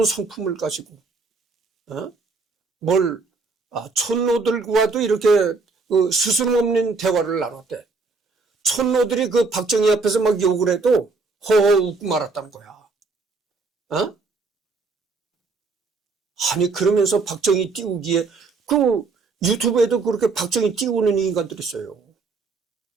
성품을 가지고 촌노들과도 이렇게 스스럼 없는 대화를 나눴대. 촌노들이 그 박정희 앞에서 막 욕을 해도 허허 웃고 말았다는 거야. 아니 그러면서 박정희 띄우기에 그 유튜브에도 그렇게 박정희 띄우는 인간들이 있어요.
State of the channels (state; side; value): quieter; left; 4.1 dB